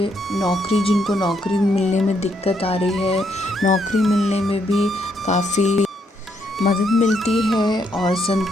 जिनको नौकरी मिलने में दिक्कत आ रही है, नौकरी मिलने में भी काफ़ी मदद मिलती है और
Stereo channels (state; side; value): normal; both; correlation 0.75